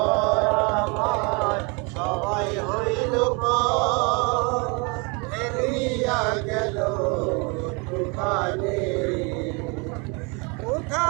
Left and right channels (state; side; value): quieter; left; 31.0 dB